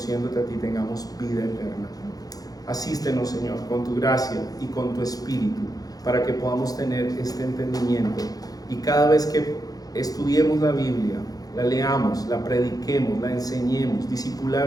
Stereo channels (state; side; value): late; right; 0.18 ms